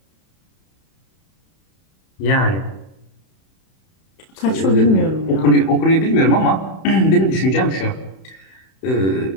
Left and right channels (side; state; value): right; late; 31 ms